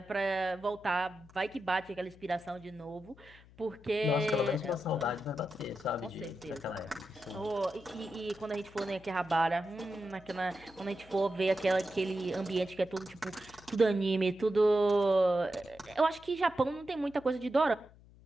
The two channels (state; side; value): noise; left; hum, 24 dB below the sound